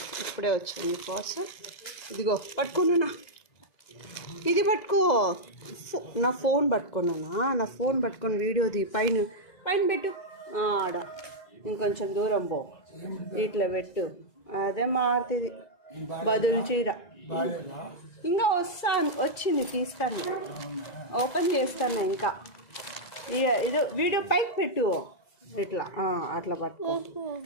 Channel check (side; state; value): right; late; 2.0 ms